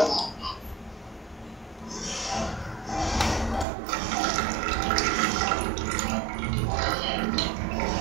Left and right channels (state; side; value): drops out; left; at 3.7 s